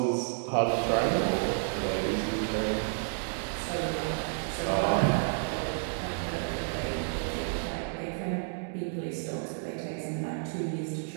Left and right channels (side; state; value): left; silent; 57 dB below the other